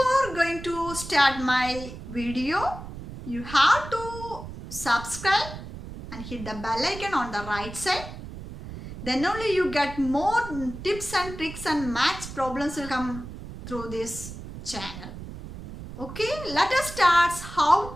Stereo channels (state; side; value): noise; right; rumble, 11 dB below the sound